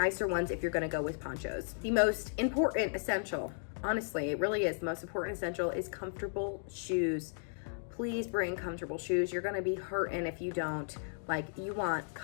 ones if you're gonna go with ponchos. The most important essential, honestly, it really is, the most important essential is comfortable shoes. Please bring comfortable shoes. You're gonna be hurting if you don't. Like, you want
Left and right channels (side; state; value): right; silent; digital silence